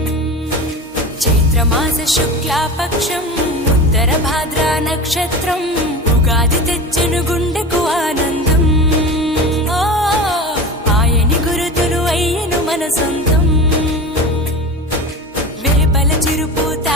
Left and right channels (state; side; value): normal; both; correlation 0.30